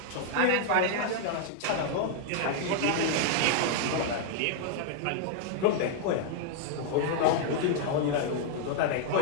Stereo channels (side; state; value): both; different; correlation 0.00